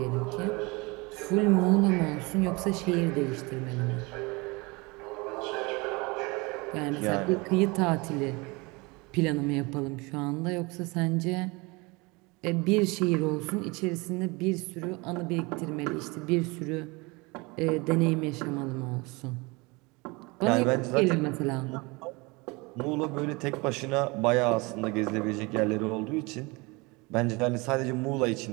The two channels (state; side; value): quieter; left; 26.0 dB